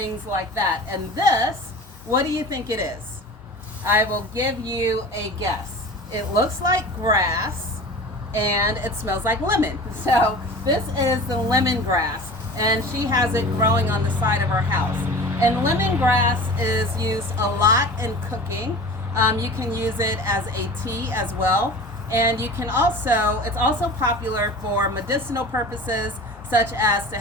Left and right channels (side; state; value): both; normal; correlation 0.37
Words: like that. And this, what do you think it is? I will give you a guess. It looks like grass and it smells like lemon. So this is the lemongrass, and she has it growing on the side of her house. And lemongrass is used a lot in cooking. You can use it as a tea as well. And you can also, it's also popular for medicinal purposes, such as to